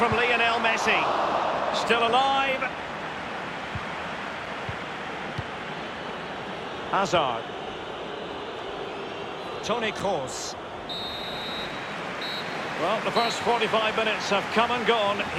Lionel Messi. Still alive. Hazard. Toni Kroos. Well, the first 45 minutes have come and gone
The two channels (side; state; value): both; identical; correlation 1.00